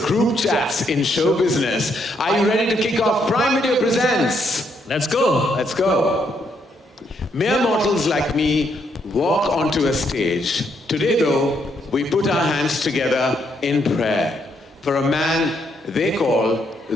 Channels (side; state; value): both; normal; correlation 0.75